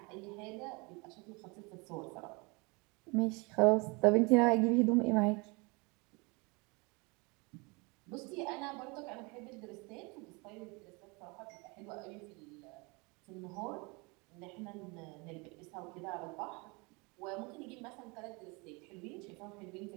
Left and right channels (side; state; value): left; quieter; 28.4 dB